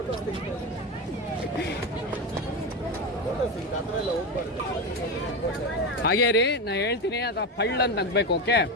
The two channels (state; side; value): normal; both; correlation 0.16